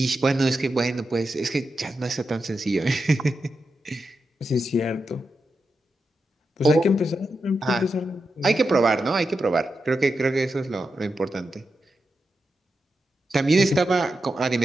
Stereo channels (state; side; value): normal; both; correlation 0.88